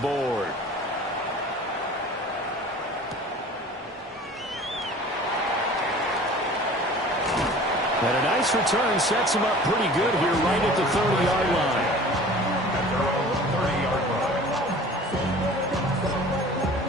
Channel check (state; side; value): normal; both; correlation 0.44